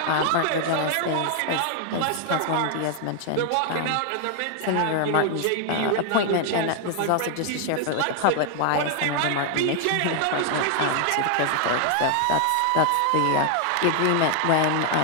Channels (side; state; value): both; different; correlation 0.00